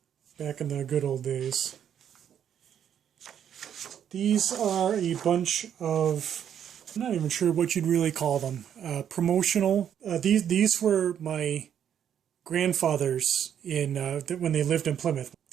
back in the good old days. These are a bunch of, I'm not even sure what you'd really call them, promotional. These were my grandfather's when they lived in Plymouth.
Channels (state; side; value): quieter; left; 9.2 dB